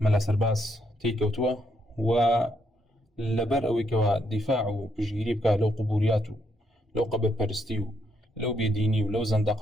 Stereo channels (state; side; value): normal; both; correlation 0.76